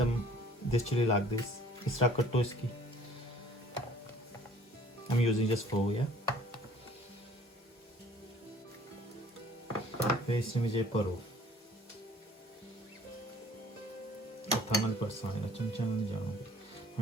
this chili like this. इस तरह कटो इसकी. I'm using just 4, yeah. फिर इसमें मुझे परो. थामल पर साने चमचा में जाऊंगी.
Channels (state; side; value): normal; both; correlation 0.53